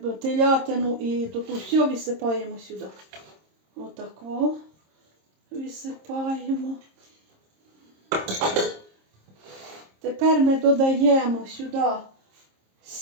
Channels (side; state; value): left; late; 26 ms